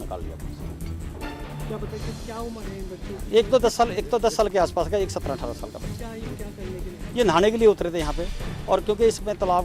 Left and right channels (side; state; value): both; identical; correlation 1.00